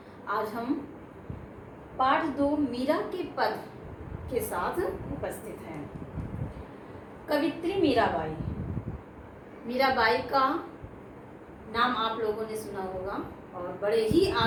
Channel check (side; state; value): both; identical; correlation 1.00